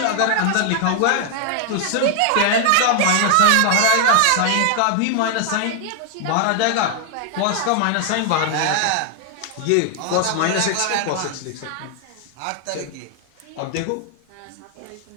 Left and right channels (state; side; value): different; both; correlation 0.00